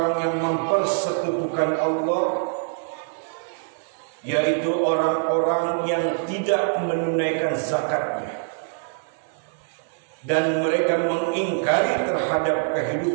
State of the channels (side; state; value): left; silent; digital silence